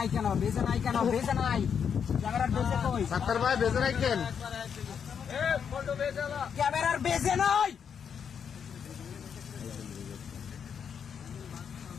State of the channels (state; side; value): quieter; right; 7.3 dB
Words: কেন? ক্যামেরার বেজে কই? সাত্তার ভাই বেজে রাখেন। ক্যামেরার বেজে নাই।